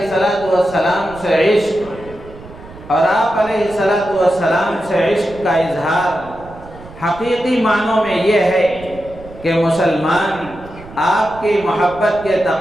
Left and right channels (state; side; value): noise; right; rumble, 18 dB below the sound